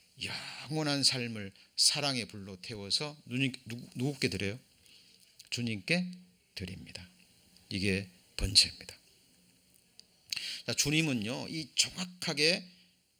영원한 삶을 사랑의 불로 태워서 누구께 드려요? 주님께 드립니다. 이게 번제입니다. 자, 주님은요, 이 정확하게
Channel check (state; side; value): identical; both; correlation 1.00